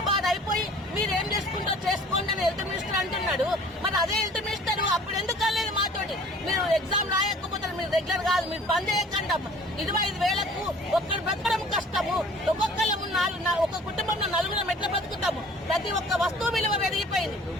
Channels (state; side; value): normal; both; correlation 0.49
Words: బాధ అయిపోయి మీరేం చేసుకుంటారో చేసుకోండి అని హెల్త్ మినిస్టర్ అంటున్నాడు. మరి అదే హెల్త్ మినిస్టర్ అప్పుడు ఎందుకు అనలేదు మాతోటి? మీరు ఎగ్జామ్ రాయకపోతే మీరు రెగ్యులర్ కాదు, మీరు బంద్ చేయకండి అమ్మ. 25 వేలకు ఒక్కరు బ్రతకడం కష్టము. ఒక కుటుంబంలో 4 ఎట్లా బ్రతుకుతాము? ప్రతి ఒక్క వస్తువు విలువ పెరిగిపోయింది.